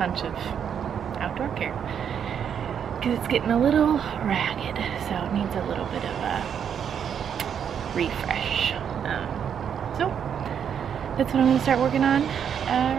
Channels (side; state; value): left; quieter; 8.1 dB